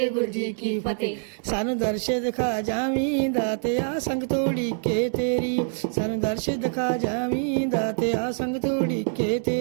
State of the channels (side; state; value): left; silent; digital silence